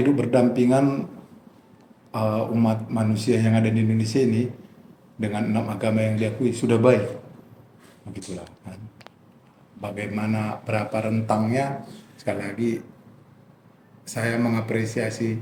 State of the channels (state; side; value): identical; both; correlation 1.00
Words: berdampingan umat manusia yang ada di Indonesia ini dengan 6 agama yang diakui sudah baik, begitulah kan. Bagaimana berapa rentangnya, sekali lagi saya mengapresiasi